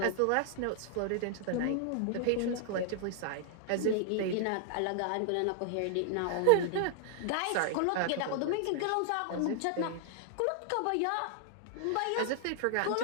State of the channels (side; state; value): both; different; correlation 0.00